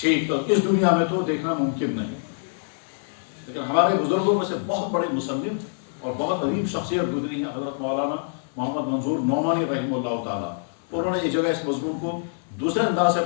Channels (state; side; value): silent; right; digital silence